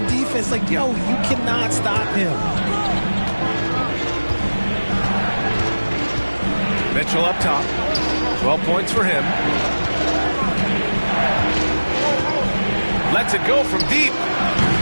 defense, like, yo, you cannot stop him. Mitchell up top. 12 points for him. Lets it go from deep.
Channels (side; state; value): both; inverted; correlation -1.00